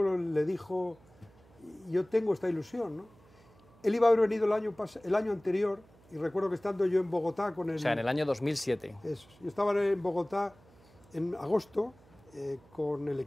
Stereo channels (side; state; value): right; noise; hum, 27 dB below the sound